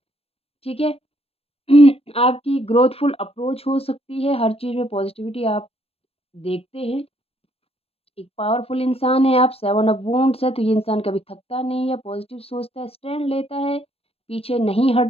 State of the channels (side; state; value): right; late; 0.28 ms